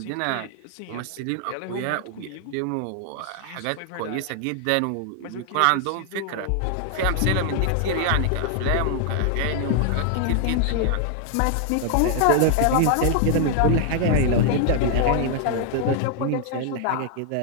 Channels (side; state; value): both; different; correlation 0.00